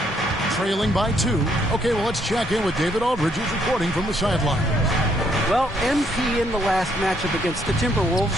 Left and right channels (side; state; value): both; normal; correlation 0.70